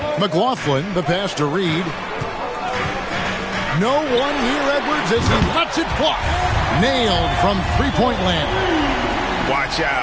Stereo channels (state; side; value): identical; both; correlation 1.00